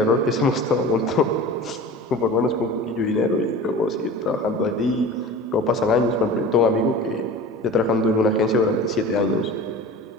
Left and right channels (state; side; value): normal; both; correlation 0.36